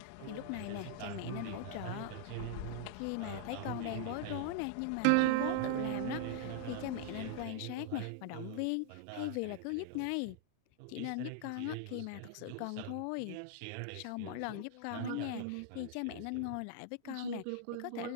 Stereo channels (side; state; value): both; different; correlation -0.01